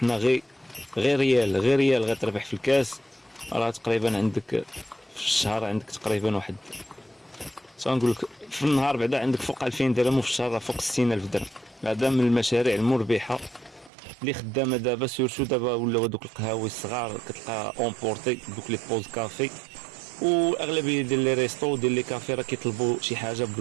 غير ريال غتربح في الكاس، راه تقريبا عندك في الشهر عندك تقريبا واحد، نقول لك في النهار بعدا عندك فوق 2000 درهم، وفي الشهر راه فوق 60000 درهم. هذا من المشاريع المربحه اللي خدامه دابا، سيرتو دابا ولاو دوك القهاوي الصغار كتلقى اونبورتي دوك لي بوز كافي، واغلبيه ديال لي ريستو ديال لي كافي راه كيطلبوا شي حاجه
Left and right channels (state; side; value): drops out; left; at 13.9 s